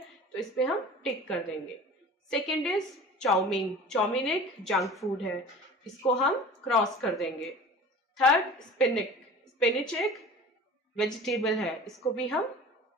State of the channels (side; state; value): both; normal; correlation 0.40